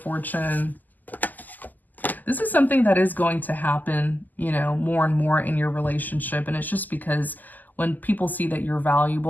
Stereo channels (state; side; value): late; right; 0.084 ms